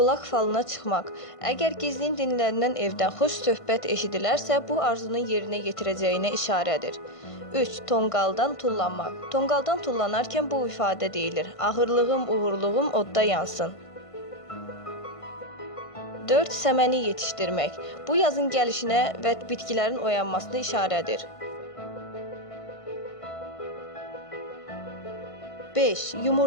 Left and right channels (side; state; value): right; late; 1.5 ms